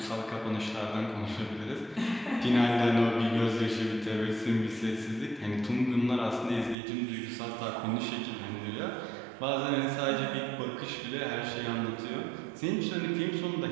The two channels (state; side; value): drops out; left; at 6.8 s